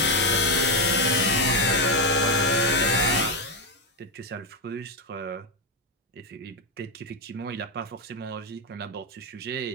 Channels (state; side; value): normal; both; correlation 0.06